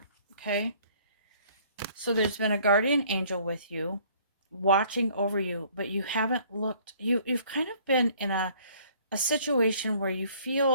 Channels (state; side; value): inverted; both; correlation -0.58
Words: Okay. So there's been a guardian angel with you, watching over you, but you haven't looked, you've kind of been in a situation where you